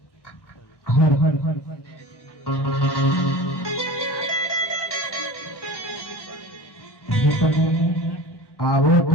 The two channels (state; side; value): late; right; 1.1 ms